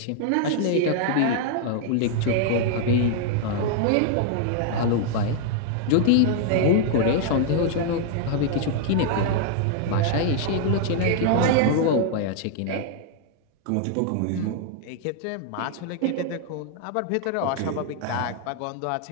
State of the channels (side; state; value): both; different; correlation 0.00